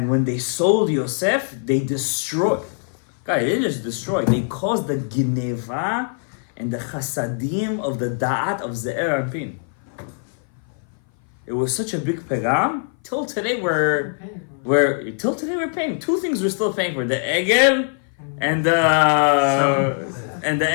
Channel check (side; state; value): right; silent; 58 dB below the other